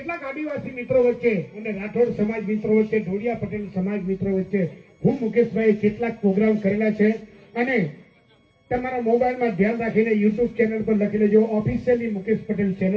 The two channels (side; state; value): both; identical; correlation 1.00